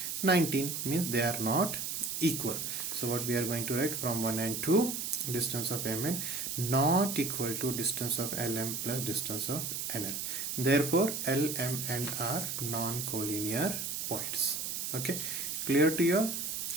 19. Means they are not equal. So what we are going to write from 1 and 2, distance of MN not equal to distance of LM plus distance of NL. Therefore L, M and R non-collinear points. Okay, clear to you all?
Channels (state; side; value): noise; right; hiss, 3 dB below the sound